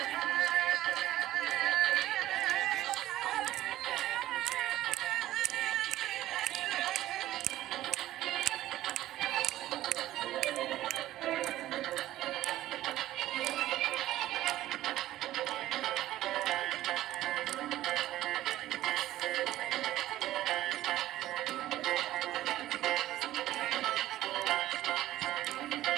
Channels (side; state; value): left; quieter; 14.6 dB